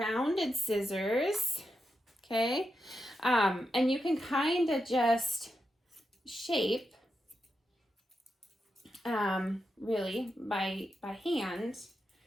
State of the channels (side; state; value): both; normal; correlation 0.87